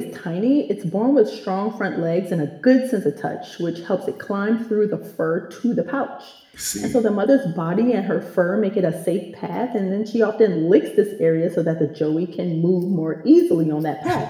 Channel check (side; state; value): both; identical; correlation 1.00